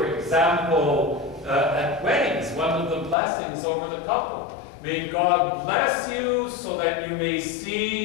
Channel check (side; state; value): right; drops out; at 3.2 s